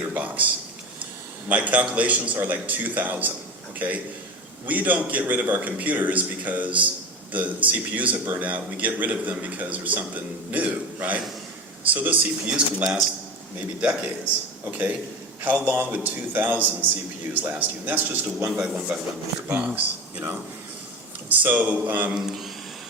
box? My calculations are like 2,000, okay? We don't get rid of our computers because the CPUs have burned out. We get rid of them because there's something new, right? So those CPUs can last maybe decades, okay? How long would 2,000 CPUs last you? And that's just a 1x1 meter box, you know? So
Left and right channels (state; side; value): normal; both; correlation 0.27